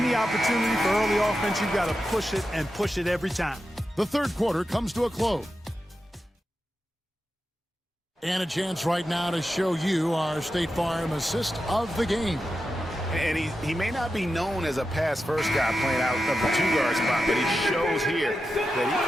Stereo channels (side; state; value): both; normal; correlation 0.90